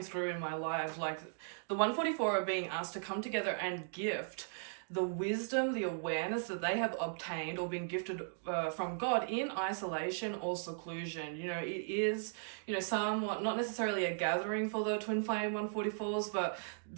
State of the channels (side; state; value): left; silent; digital silence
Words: through in my life. Like, the 144 are being asked to come together and gift the wisdom, the awareness that they have obtained or been gifted from God in isolation or seclusion. It is, somewhat not necessarily a gathering for the twin flame 144s, but